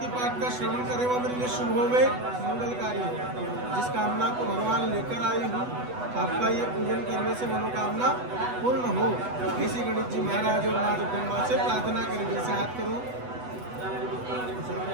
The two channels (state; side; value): late; left; 8.1 ms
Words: पाठ का श्रवण करें वो मेरे लिए शुभ होवे, मंगलकारी हो। जिस कामना को भगवान लेकर आई हूँ, आपका ये पूजन करने से मनोकामना पूर्ण हो। ऐसी गणेश जी महाराज और माँ जगदम्बा से प्रार्थना करेंगे। ऐसे हाथ करो।